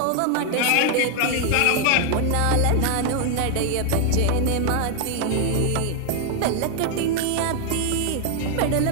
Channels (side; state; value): both; different; correlation 0.00